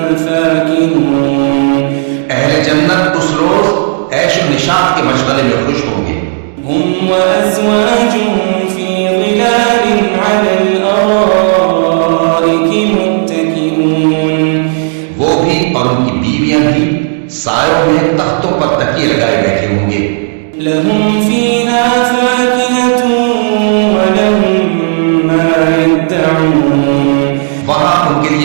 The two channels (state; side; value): silent; left; digital silence